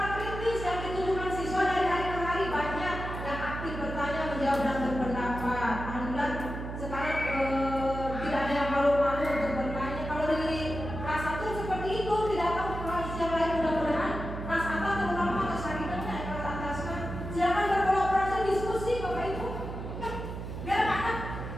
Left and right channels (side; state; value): right; noise; hum, 7 dB below the sound